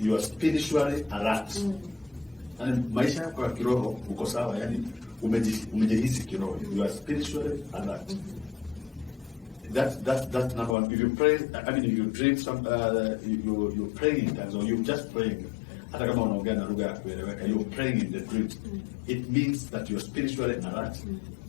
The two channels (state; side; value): drops out; right; at 10.8 s